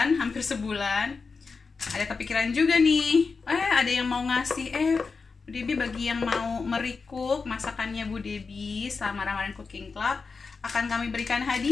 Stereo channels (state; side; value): quieter; right; 4.7 dB